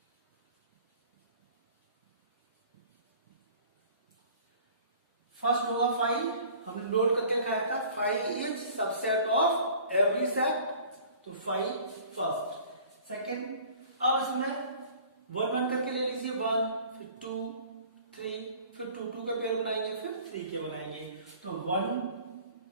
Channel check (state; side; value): inverted; both; correlation -0.48